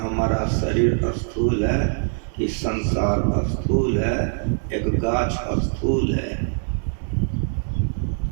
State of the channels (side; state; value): left; silent; 56 dB below the other